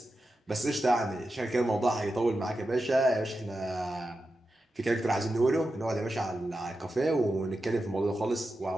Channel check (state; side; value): normal; both; correlation 0.90